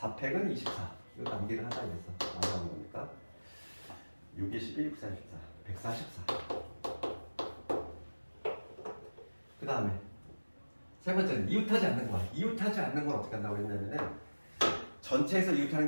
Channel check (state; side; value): inverted; both; correlation -1.00